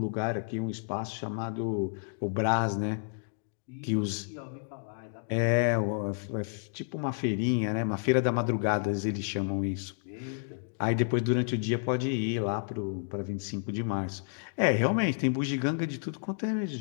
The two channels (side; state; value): right; silent; digital silence